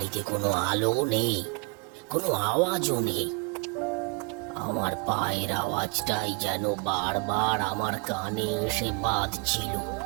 কোনো আলো নেই, কোনো আওয়াজও নেই। আমার পায়ের আওয়াজটাই যেন বারবার আমার কানে এসে বাজছিল।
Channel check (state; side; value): quieter; left; 31.0 dB